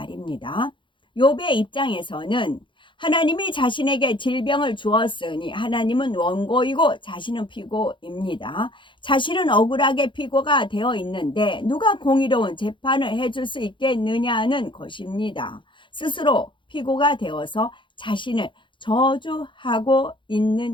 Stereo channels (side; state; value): right; late; 0.24 ms